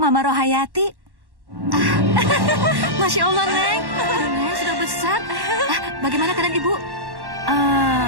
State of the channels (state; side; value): late; left; 1.1 ms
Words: Rohayati. Masya Allah, Neng. Neng sudah besar. Bagaimana keadaan Ibu?